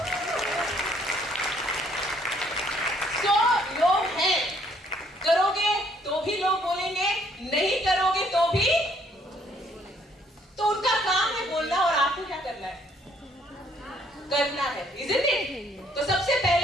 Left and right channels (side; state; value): both; normal; correlation 0.65